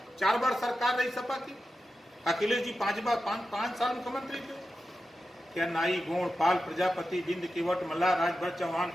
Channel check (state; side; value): normal; both; correlation 0.91